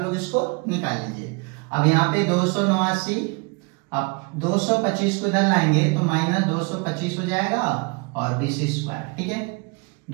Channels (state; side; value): quieter; left; 30.4 dB